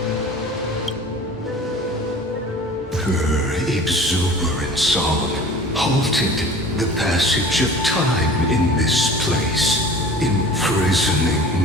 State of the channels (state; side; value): normal; both; correlation 0.43